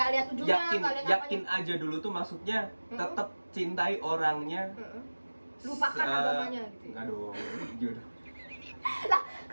lihat ujungnya, nggak lihat Yakin aja dulu tuh maksudnya tetap cintai orangnya. Lupakan agamanya gitu. Enggak dong, jodoh. Lah,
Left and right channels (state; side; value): inverted; both; correlation -1.00